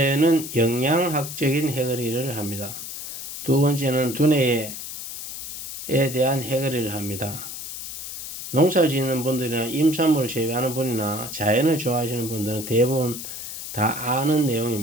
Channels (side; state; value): left; noise; hiss, 9 dB below the sound